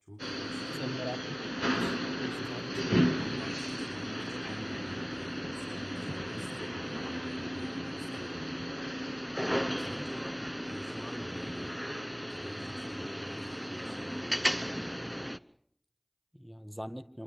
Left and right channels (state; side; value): identical; both; correlation 1.00